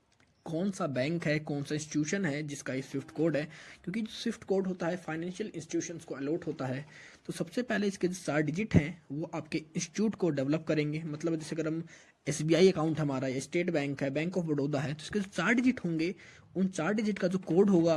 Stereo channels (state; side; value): identical; both; correlation 1.00